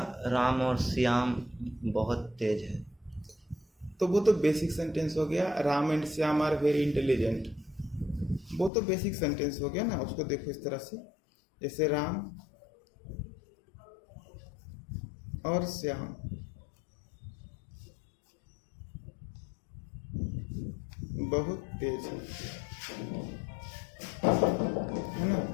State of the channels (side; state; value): right; drops out; at 8.7 s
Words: राम और श्याम बहुत तेज है, तो वो तो बेसिक सेंटेंस हो गया। Ram and Shyam are very intelligent, वो तो बेसिक सेंटेंस हो गया ना। उसको देखो इस तरह से, जैसे राम और श्याम बहुत तेज है ना।